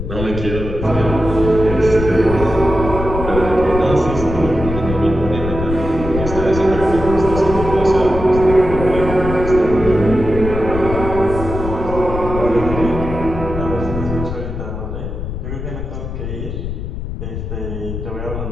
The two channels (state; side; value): noise; left; rumble, 6 dB below the sound